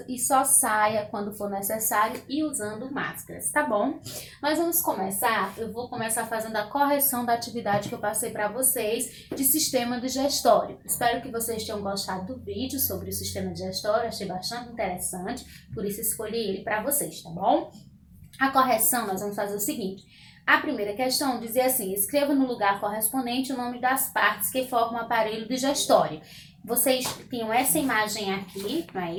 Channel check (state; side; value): identical; both; correlation 1.00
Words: e só saia quando for necessário e usando máscaras, tá bom? Nós vamos começar, eu vou começar fazendo a correção da atividade que eu passei para vocês de sistema digestório. Espero que vocês tenham gostado do vídeo sobre o sistema digestório, achei bastante interessante, por isso escolhi ele para vocês, tá bom? A correção, nós vamos fazer o seguinte. A primeira questão dizia assim: escreva no lugar correspondente o nome das partes que formam o aparelho digestório. Vocês tinham essa imagem aqui, não é